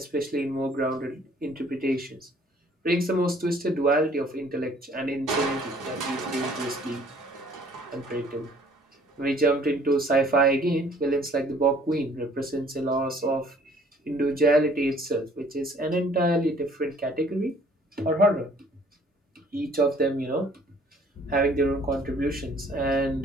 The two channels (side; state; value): both; normal; correlation 0.58